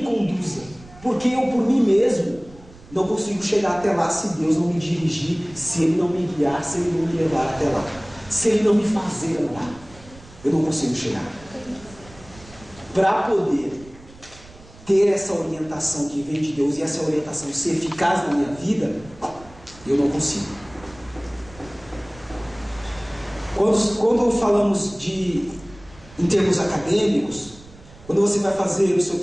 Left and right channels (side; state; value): right; noise; rumble, 21 dB below the sound